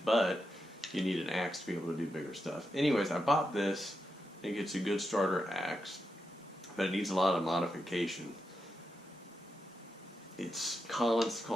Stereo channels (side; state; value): both; normal; correlation 0.87